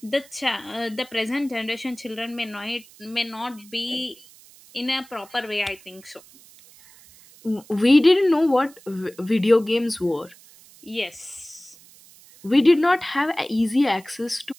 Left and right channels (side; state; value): right; noise; hiss, 24 dB below the sound